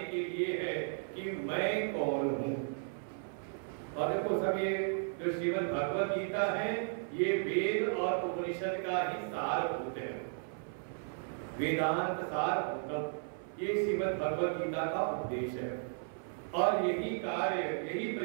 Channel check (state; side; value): silent; left; 54 dB below the other